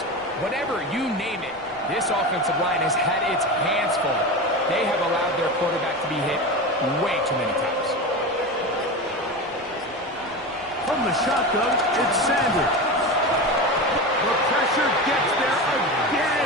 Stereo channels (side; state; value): left; noise; rumble, 27 dB below the sound